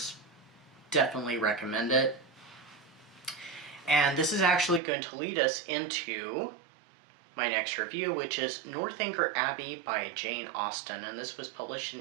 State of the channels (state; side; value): drops out; left; at 4.8 s